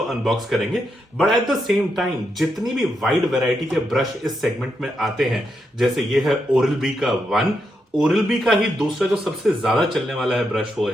अनबॉक्स करेंगे but at the same time जितनी भी वाइड वैरायटी के ब्रश इस सेगमेंट में आते हैं, जैसे ये है ओरल बी का ओरल बी का ही दूसरा जो सबसे ज्यादा चलने वाला है ब्रश वो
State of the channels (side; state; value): both; normal; correlation 0.82